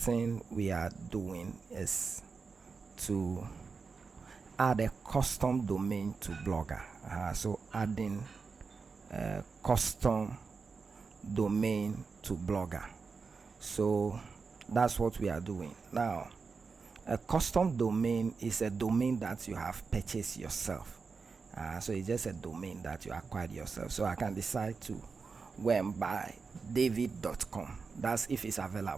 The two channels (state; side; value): quieter; left; 4.9 dB